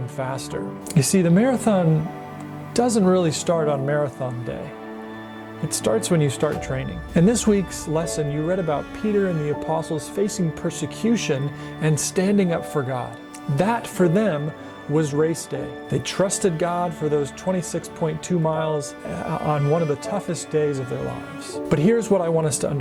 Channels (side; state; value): both; identical; correlation 1.00